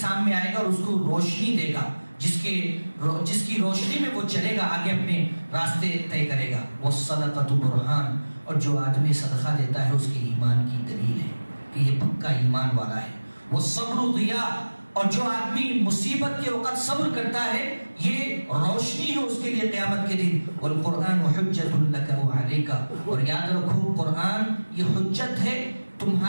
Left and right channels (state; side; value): inverted; both; correlation -1.00